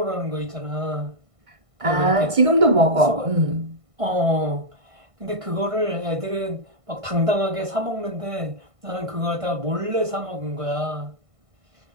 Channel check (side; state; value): left; late; 1.5 ms